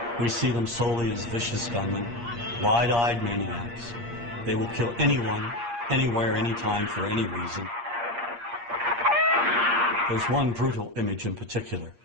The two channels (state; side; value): late; left; 8.5 ms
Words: We see them solely as vicious gunmen, wide-eyed maniacs. They will kill anyone, anywhere, anytime, for any reason. There's one brutal image in particular